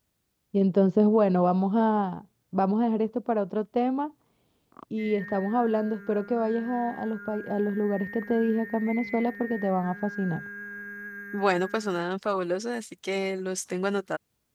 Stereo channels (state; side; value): identical; both; correlation 1.00